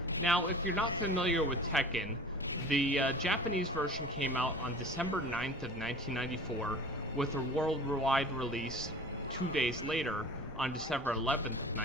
Now, if you're not familiar with Tekken, the Japanese version came out on December 9th of 1994, with a worldwide release 2 days later on December 11th of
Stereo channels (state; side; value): normal; both; correlation 0.41